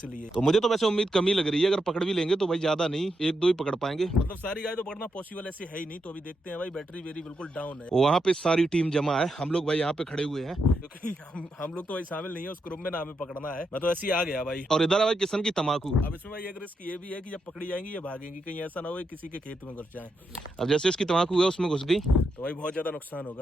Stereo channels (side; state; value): both; normal; correlation 0.83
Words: तो मुझे तो वैसे उम्मीद कमी लग रही है, अगर पकड़ भी लेंगे तो भाई ज्यादा नहीं, 1-2 ही पकड़ पाएंगे। मतलब सारी गाय तो पकड़ना पॉसिबल ऐसे है ही नहीं। तो अभी देखते हैं भाई, बैटरी बिल्कुल डाउन है। वहाँ पे सारी टीम जमा है, हम लोग भाई यहाँ पे खड़े हुए हैं, क्योंकि हम लोग तो भाई शामिल नहीं है उस ग्रुप में, ना हमें पकड़ना है। मैं तो ऐसे ही आ गया भाई। और इधर है भाई किशन की तम्बाकू। अब इसमें भाई एक रिस्क ये भी है कि जब पकड़ी जाएंगी ये भागेंगी, कहीं ऐसा ना हो किसी के खेत में घुस जाए। अब जैसे इसकी तम्बाकू है उसमें घुस गई तो भाई बहुत ज्यादा नुकसान